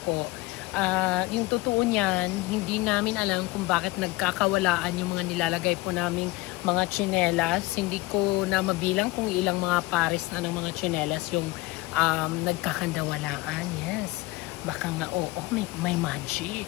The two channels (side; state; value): right; quieter; 21.1 dB